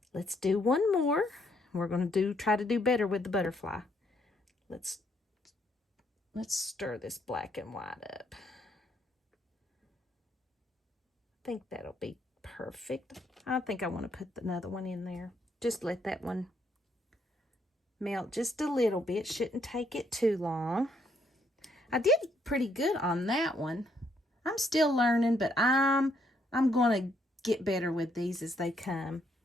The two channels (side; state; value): both; normal; correlation 0.72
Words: let's do one more. We're going to try to do better with the butterfly. Let's stir this black and white up. I think that'll be perfect. I think I want to put another one in there. Just let that one melt just a little bit. Shouldn't take it too long. I did pretty good on that one. I'm still learning, but I'm going to get better with these as they come.